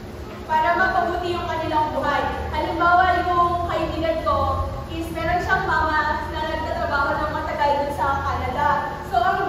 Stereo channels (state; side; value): identical; both; correlation 1.00